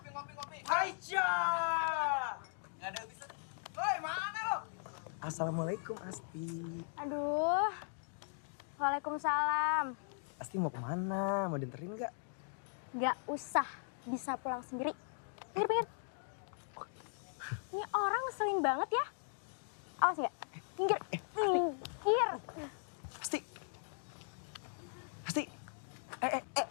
Aisyah. Enggak ada bisa. Woi, mana lo? Assalamualaikum Asti. Aduh. Waalaikumsalam. Asti mau kemana? Mau dianterin nggak? Gak usah, bisa pulang sendiri. Pinggir. Ini orang ngeselin banget ya. Awas nggak? Pinggir. Asti.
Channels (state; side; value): silent; right; digital silence